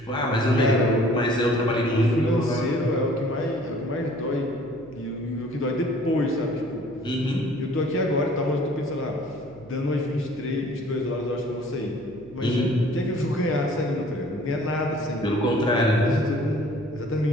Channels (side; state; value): right; noise; hum, 23 dB below the sound